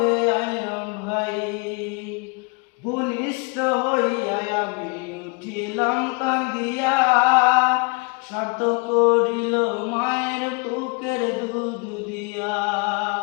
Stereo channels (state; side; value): quieter; right; 30.4 dB